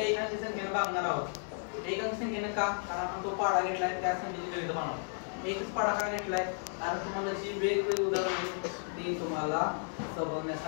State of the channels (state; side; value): silent; right; 55 dB below the other